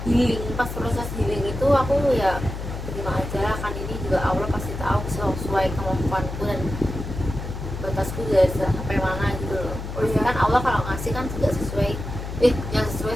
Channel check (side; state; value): left; noise; hum, 7 dB below the sound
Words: healing. Pas proses healing itu aku ya terima aja lah, kan ini juga Allah pasti tahu sesuai kemampuanku dan batasku juga sampai mana gitu loh. Oh, Pasti iya. kan Allah kalau ngasih kan juga sesuai yang sesuai